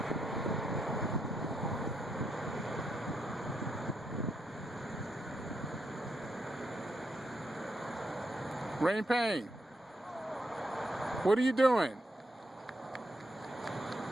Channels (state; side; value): normal; both; correlation 0.81